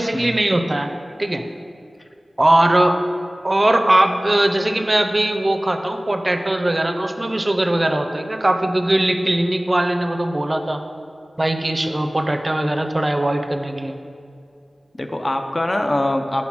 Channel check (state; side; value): normal; both; correlation 0.98